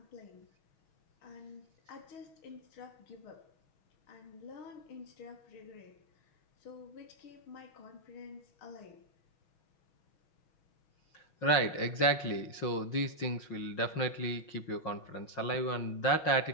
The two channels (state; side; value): late; right; 6.3 ms